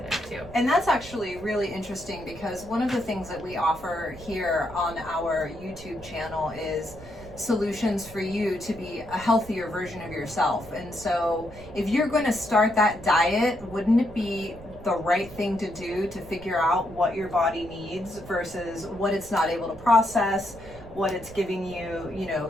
to. And that's actually really interesting, because one of the things that we offer here on our YouTube channel is solutions for you to be a healthier version of yourself. And so if you're going to start that diet, wouldn't it be the right thing to do to figure out what your body needs versus what it's not able to process, what it's giving you,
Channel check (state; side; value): noise; right; rumble, 17 dB below the sound